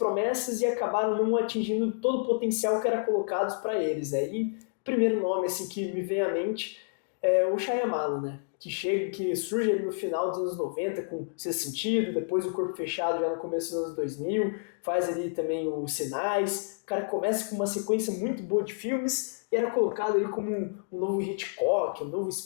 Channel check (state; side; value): silent; right; digital silence